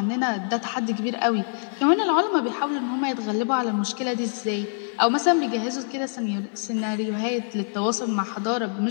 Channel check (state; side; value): silent; right; 62 dB below the other